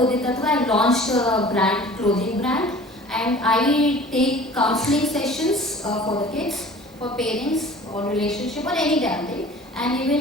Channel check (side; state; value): both; normal; correlation 0.45